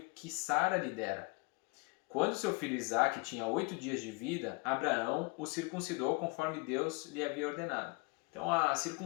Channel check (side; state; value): right; quieter; 28.5 dB